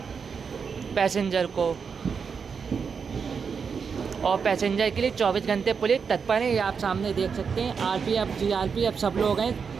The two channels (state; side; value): quieter; left; 6.0 dB